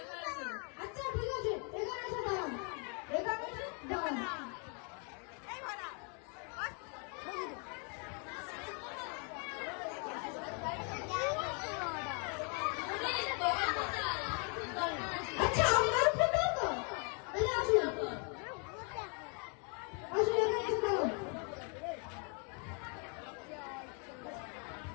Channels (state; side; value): quieter; right; 37.4 dB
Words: আচ্ছা ঠিক আছে, এখানে এসে দাঁড়ান, এখানে এসে দাঁড়ান। আচ্ছা আপনার ফটো তো তাহলে আসুন, আসুন এখানে এসে দাঁড়ান।